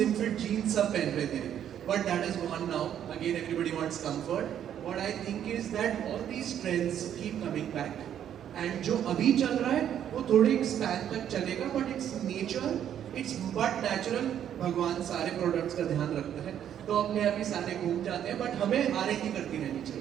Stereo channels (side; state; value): left; quieter; 9.9 dB